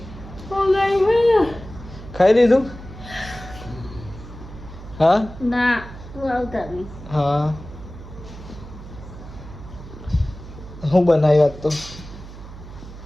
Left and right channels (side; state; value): right; noise; hum, 15 dB below the sound